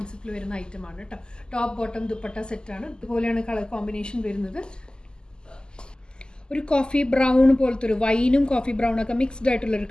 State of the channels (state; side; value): late; right; 0.047 ms